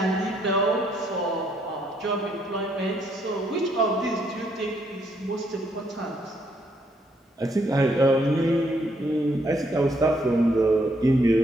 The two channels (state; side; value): normal; both; correlation 0.72